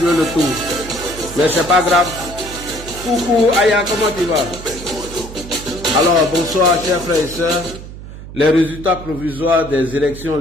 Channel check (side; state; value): right; noise; hum, 13 dB below the sound